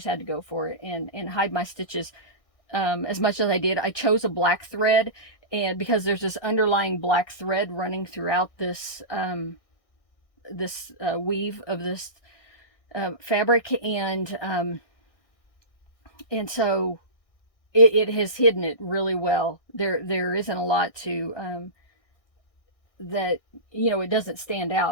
go for it and hide my stitches as much as I did. I chose a black thread, and because there's this underlying black thread running throughout this weave of this fabric, and so it has hidden it really well. There isn't a lot to that, you know, it doesn't stand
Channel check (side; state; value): right; late; 1.6 ms